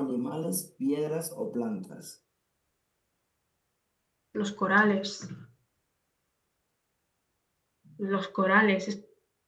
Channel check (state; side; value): identical; both; correlation 1.00